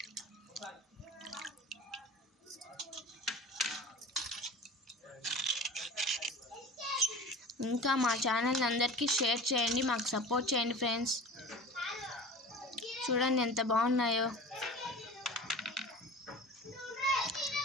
ఇంకా మా ఛానల్ అందరికీ షేర్ చేయండి. మాకు సపోర్ట్ చేయండి ఫ్రెండ్స్. చూడండి ఎంత బాగున్నాయో.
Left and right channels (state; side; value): normal; both; correlation 0.37